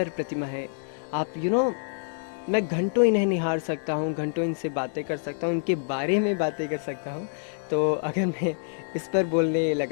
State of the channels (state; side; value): silent; right; 60 dB below the other